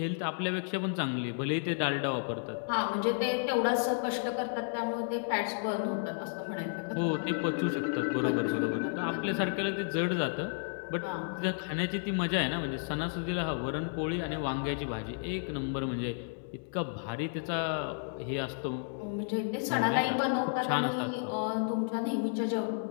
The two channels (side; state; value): right; silent; digital silence